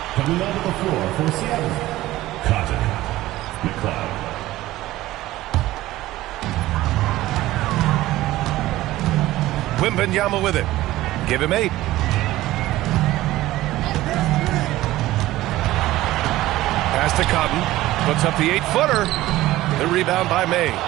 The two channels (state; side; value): quieter; left; 16.3 dB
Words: Coming onto the floor for Seattle, Cotton McLeod. Wembanyama with it. Give him 8. Pass to Cotton. Puts up the 8-footer. The rebound by May.